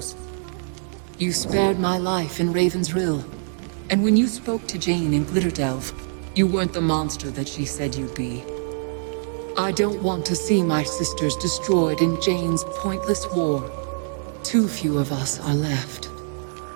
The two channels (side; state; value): left; silent; 63 dB below the other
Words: You spared my life in Raven's Rill, and when you spoke to Jeyne in Glitterdelve, you weren't the monster that she said you'd be. I don't want to see my sisters destroyed in Jeyne's pointless war. Too few of us are left.